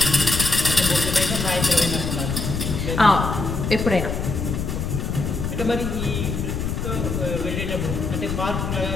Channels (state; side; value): noise; left; rumble, 3 dB below the sound